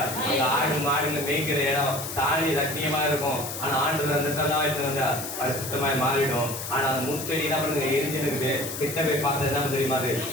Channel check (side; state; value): left; noise; hiss, 7 dB below the sound